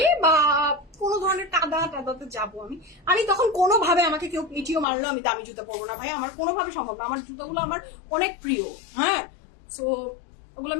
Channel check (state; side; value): drops out; right; at 4.9 s